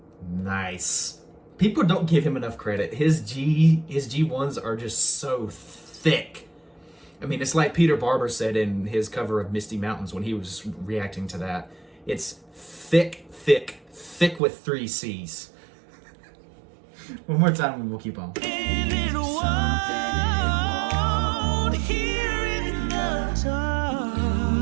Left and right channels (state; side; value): drops out; left; at 14.4 s